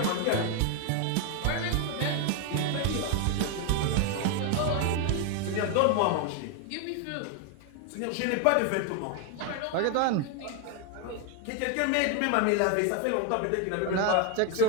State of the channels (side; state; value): both; different; correlation 0.01